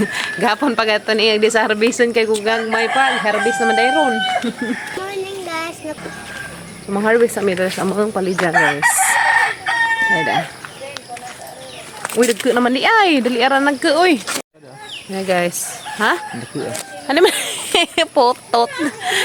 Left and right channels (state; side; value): identical; both; correlation 1.00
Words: Gapon pa gato ni di sa harveston kay kugang may pag harvest naman dayron. Morning guys. Mang-harvest mi dali sa amang palija guys. Ayda. Uy, dagko naman di ay, dali aran nagko uy. Hey guys, ha? Ano man? Potot.